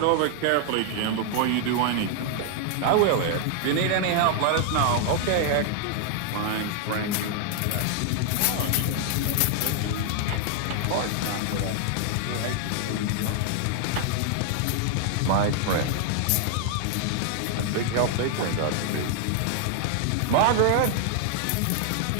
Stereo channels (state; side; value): different; both; correlation 0.00